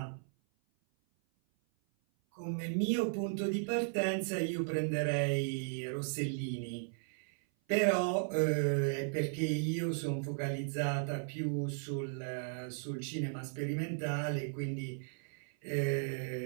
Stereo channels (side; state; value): left; silent; 54 dB below the other